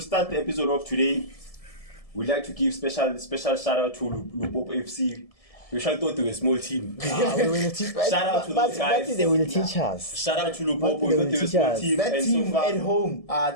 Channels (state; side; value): late; right; 1.7 ms